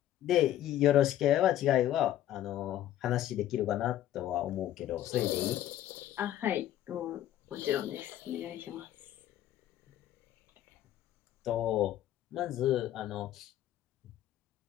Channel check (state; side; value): quieter; right; 12.5 dB